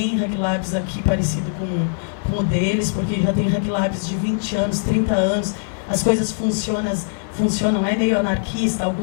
Hack Labs aqui parecido com o deles, porque já tem Hack Labs de 20 anos, 30 anos, as coisas funcionam, é meio anarquista,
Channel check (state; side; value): silent; right; 63 dB below the other